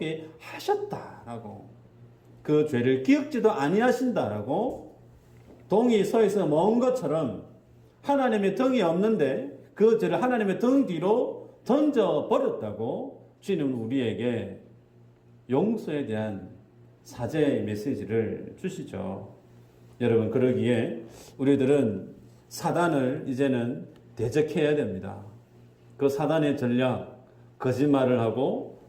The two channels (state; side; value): identical; both; correlation 1.00